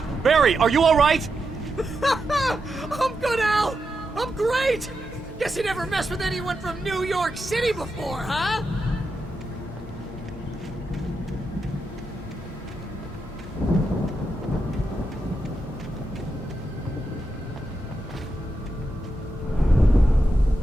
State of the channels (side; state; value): both; normal; correlation 0.86